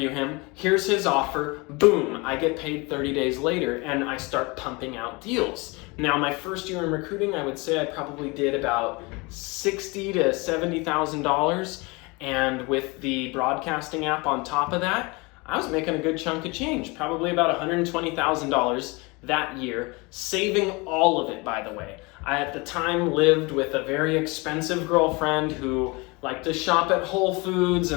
him, here's his offer, boom, I get paid 30 days later, and I start pumping out deals. Now, my first year in recruiting, I would say I probably did about $60,000 to $70,000, and with the broadcasting app on top of that, I was making a good chunk of change, probably about $120,000 that year, saving all of it, by the way. I, at the time, lived with a very expensive girlfriend who liked to shop at Whole Foods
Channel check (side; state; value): right; quieter; 26.4 dB